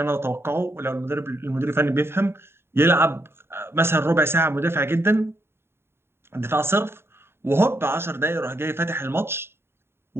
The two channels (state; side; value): late; left; 0.11 ms